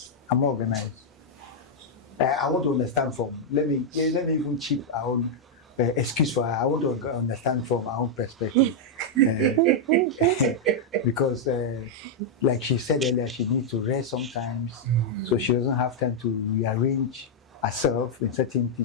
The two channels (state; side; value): normal; both; correlation -0.04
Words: I'm more organized. I want to understand from. Let me even chip our own excuse for her. I want to understand from our own perspective. Because, like she said earlier, she needs to rest sometimes, so she doesn't have time to rearrange herself in certain